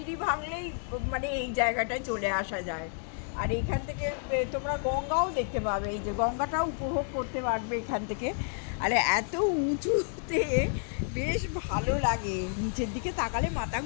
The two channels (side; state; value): right; silent; 58 dB below the other